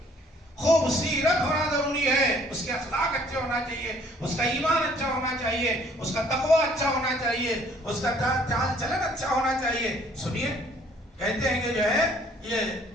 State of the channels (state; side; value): normal; both; correlation 0.59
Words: خوبصیرت ہونا ضروری ہے، اس کے اخلاق اچھے ہونا چاہیے، اس کا ایمان اچھا ہونا چاہیے، اس کا تقوی اچھا ہونا چاہیے، اس کا چال چلن اچھا ہونا چاہیے۔ سنیے، کہتے ہیں کہ جو ہے یہ